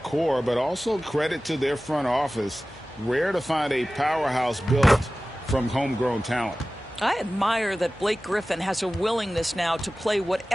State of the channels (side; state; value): both; normal; correlation 0.96